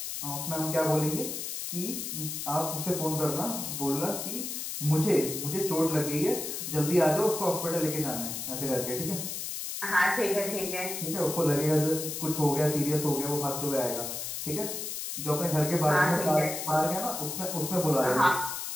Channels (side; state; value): left; noise; hiss, 5 dB below the sound